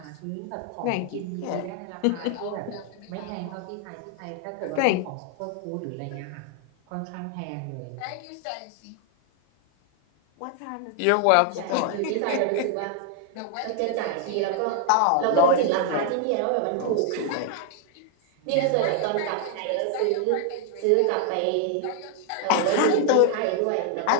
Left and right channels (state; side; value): different; both; correlation 0.00